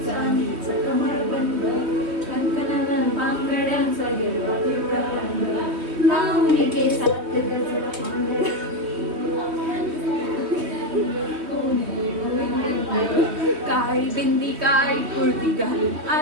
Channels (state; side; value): late; left; 3.1 ms